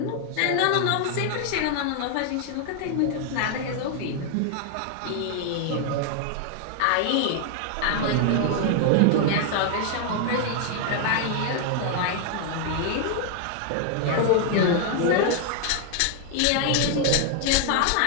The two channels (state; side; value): different; both; correlation 0.00